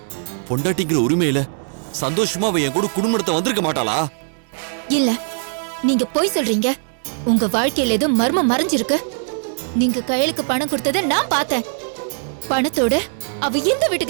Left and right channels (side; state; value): left; silent; digital silence